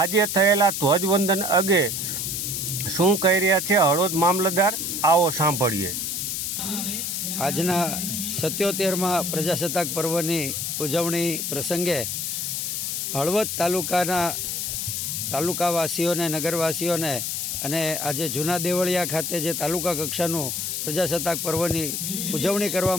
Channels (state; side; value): noise; left; hiss, 2 dB below the sound